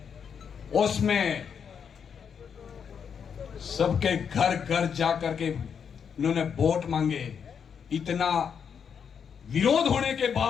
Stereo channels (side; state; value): right; quieter; 7.1 dB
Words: उसमें सबके घर घर जाकर के उन्होंने वोट मांगे। इतना विरोध होने के